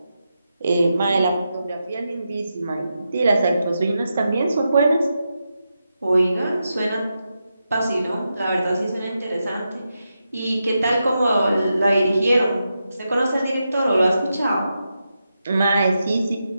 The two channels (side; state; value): both; inverted; correlation -0.87